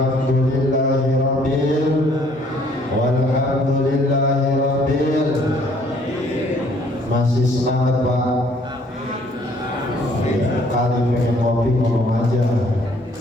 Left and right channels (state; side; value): normal; both; correlation 0.61